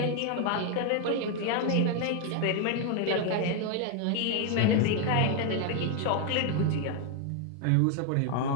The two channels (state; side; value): different; both; correlation 0.01